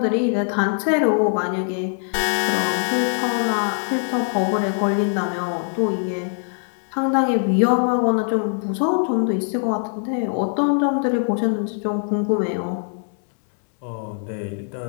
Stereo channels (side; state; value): right; silent; 60 dB below the other